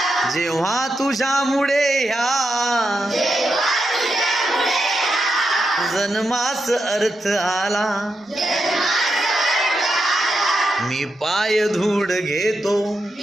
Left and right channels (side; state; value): both; normal; correlation 0.85